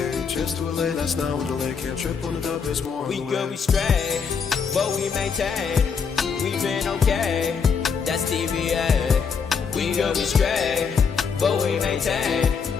Trips to LA, that's now I'm delayed. Can't trip on the dub, it's more on We the good, way. we straight, but we maintain. We been okay, that's TVA. We good, we straight, but we maintain.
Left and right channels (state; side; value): quieter; right; 6.0 dB